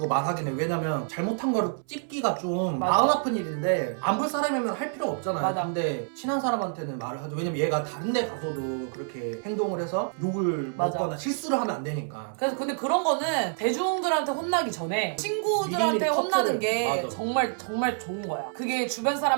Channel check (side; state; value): left; silent; 60 dB below the other